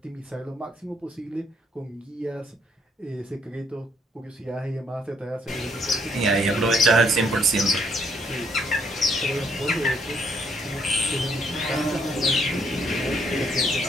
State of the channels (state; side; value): normal; both; correlation 0.69